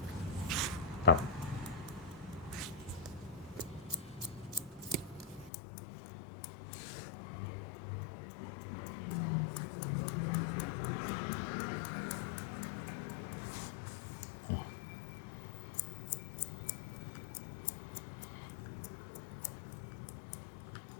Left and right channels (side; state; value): right; drops out; at 5.5 s